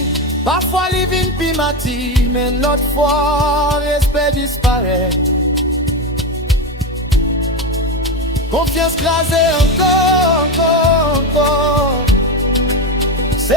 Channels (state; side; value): normal; both; correlation 0.14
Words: parfois li vin pi mati, mais notre fois respect disparaît. Confiance crasée encore.